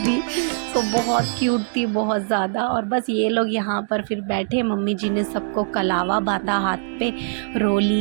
तो बहुत क्यूट थी, बहुत ज़्यादा। और बस ये लोग यहाँ पर फिर बैठे, मम्मी जी ने सबको कलावा बांधा हाथ पे,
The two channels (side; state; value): left; silent; digital silence